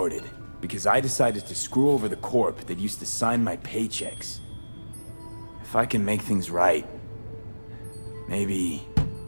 because I decided to screw over the corp that used to sign my paychecks. If I can make things right, maybe...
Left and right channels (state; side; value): inverted; both; correlation -1.00